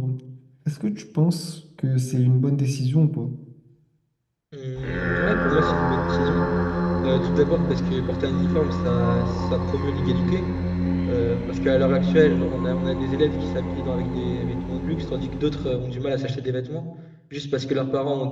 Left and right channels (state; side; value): identical; both; correlation 1.00